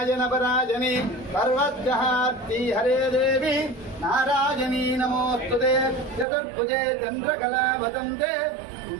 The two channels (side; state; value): left; drops out; at 6.2 s